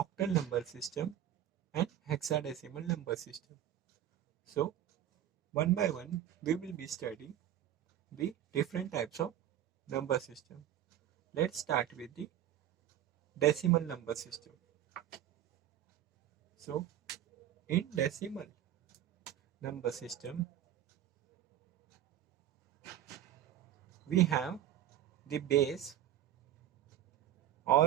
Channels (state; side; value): quieter; left; 11.6 dB